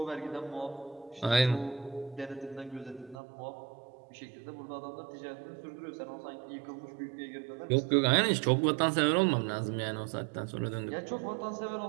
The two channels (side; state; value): left; drops out; at 3.2 s